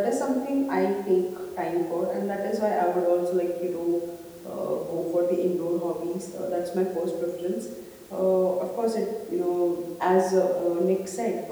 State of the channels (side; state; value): both; identical; correlation 1.00